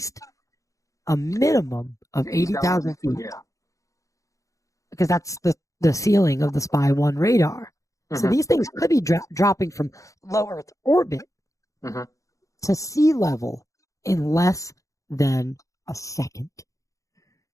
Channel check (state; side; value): late; right; 0.16 ms